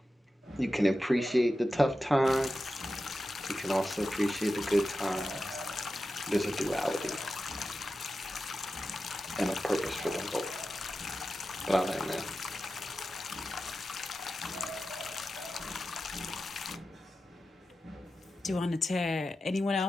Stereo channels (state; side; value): normal; both; correlation 0.92